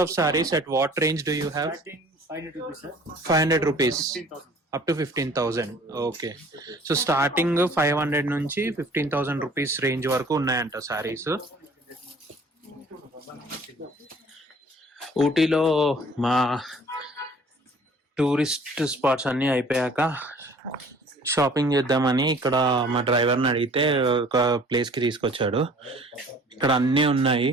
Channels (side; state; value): both; normal; correlation 0.51